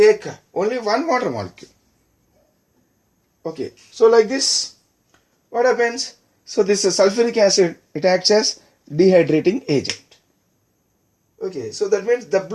only one water molecule. Okay, so like this, what happens? So this sulfuric acid, it acts as dehydrating agent. Okay, so that means the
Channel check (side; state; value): both; identical; correlation 1.00